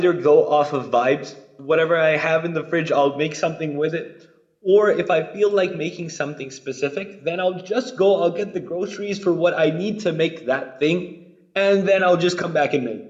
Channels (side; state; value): both; identical; correlation 1.00